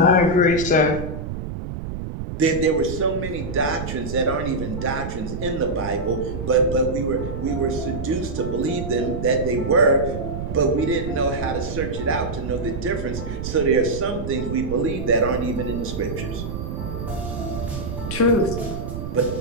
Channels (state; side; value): noise; right; rumble, 6 dB below the sound